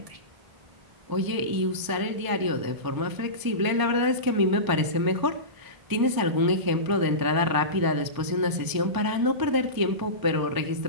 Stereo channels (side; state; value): left; late; 1.0 ms